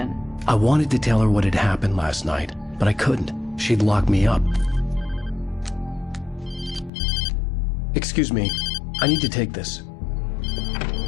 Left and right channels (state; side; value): drops out; right; at 6.9 s